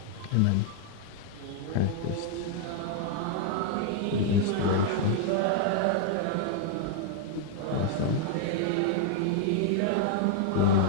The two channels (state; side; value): different; both; correlation 0.00